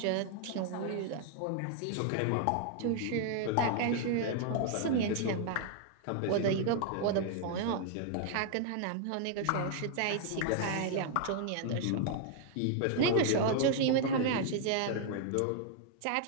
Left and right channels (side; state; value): both; different; correlation 0.00